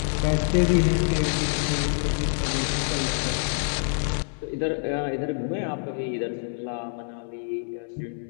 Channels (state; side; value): silent; right; digital silence